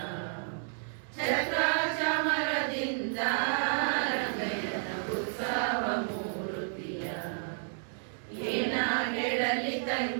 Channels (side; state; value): left; silent; digital silence